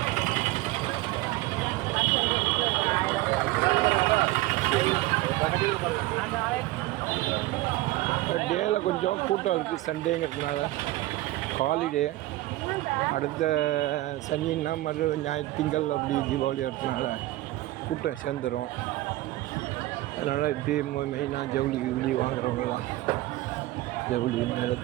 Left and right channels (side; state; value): left; quieter; 17.7 dB